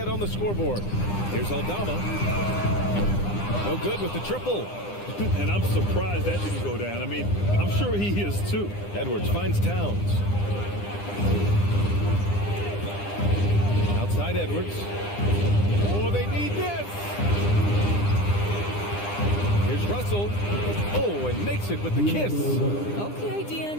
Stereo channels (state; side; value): late; right; 9.9 ms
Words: on the scoreboard. Here's Aldama. No good with the triple. And I'm surprised that didn't go down. I mean, I'm sure he is too. Edwards finds Towns. Outside Edwards. Oh, they need this. Here's Russell. Oh, and makes it with the kiss. Okay,